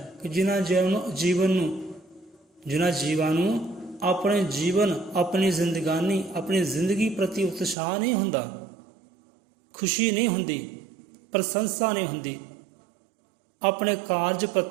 ਕਿ ਜਿਨ੍ਹਾਂ ਜੀਵਾਂ ਨੂੰ ਆਪਣੇ ਜੀਵਨ, ਆਪਣੀ ਜ਼ਿੰਦਗਾਨੀ, ਆਪਣੀ ਜ਼ਿੰਦਗੀ ਪ੍ਰਤੀ ਉਤਸ਼ਾਹ ਨਹੀਂ ਹੁੰਦਾ, ਖੁਸ਼ੀ ਨਹੀਂ ਹੁੰਦੀ, ਪ੍ਰਸ਼ੰਸਾ ਨਹੀਂ ਹੁੰਦੀ, ਆਪਣੇ ਕਾਰਜ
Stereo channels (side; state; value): left; drops out; at 7.8 s